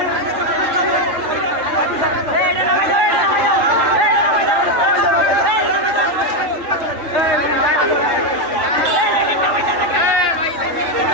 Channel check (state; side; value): late; left; 3.7 ms